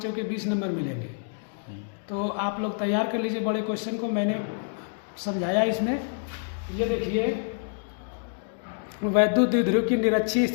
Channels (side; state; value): right; silent; digital silence